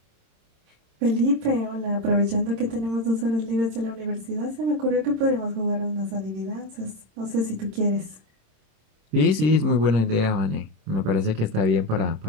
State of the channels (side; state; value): left; late; 26 ms